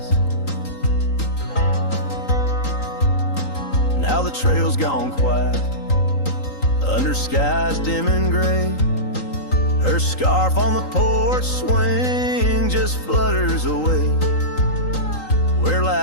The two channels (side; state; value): right; late; 3.8 ms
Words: Now the trail's gone quiet under skies dim and gray. Her scarf on the porch swing just flutters away. Where